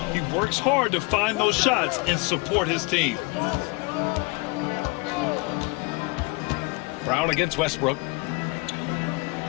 He works hard to find those shots and support his team. Brown against Westbrook.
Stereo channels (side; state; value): right; quieter; 26.7 dB